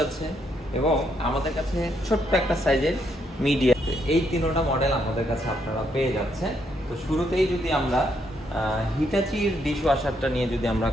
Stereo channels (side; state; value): both; normal; correlation 0.75